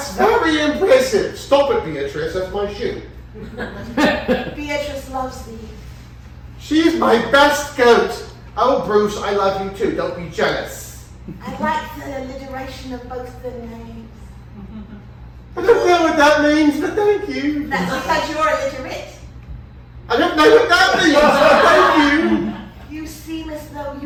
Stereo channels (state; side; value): identical; both; correlation 1.00